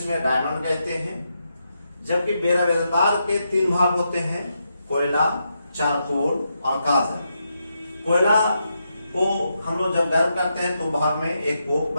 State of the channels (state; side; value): inverted; both; correlation -0.83